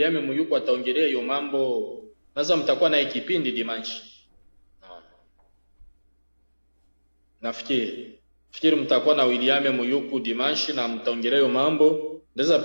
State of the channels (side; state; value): both; inverted; correlation -1.00